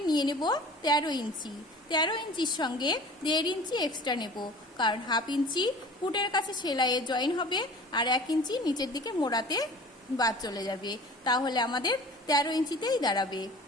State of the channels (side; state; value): both; normal; correlation 0.43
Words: নিয়ে নেব 13 ইঞ্চি। 13 ইঞ্চির সঙ্গে 1.5 ইঞ্চি এক্সট্রা নেব, কারণ 1/2 ইঞ্চি ফুটের কাছে সেলাইয়ে জয়েন হবে আর 1 ইঞ্চি নিচের দিকে মোড়াতে বাদ চলে যাবে, তাহলে আমাদের 13 ইঞ্চিতেই দাঁড়াবে।